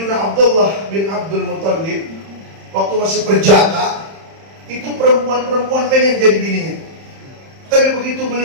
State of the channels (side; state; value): left; late; 31 ms